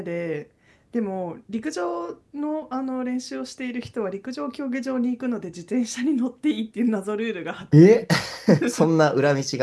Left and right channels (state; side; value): identical; both; correlation 1.00